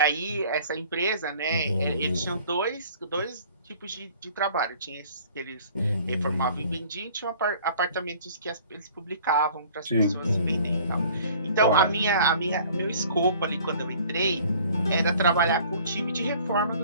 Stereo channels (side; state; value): both; inverted; correlation -0.51